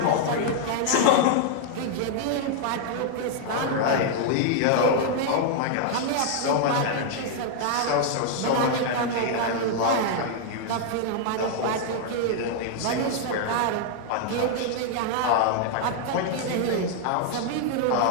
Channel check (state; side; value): different; both; correlation 0.00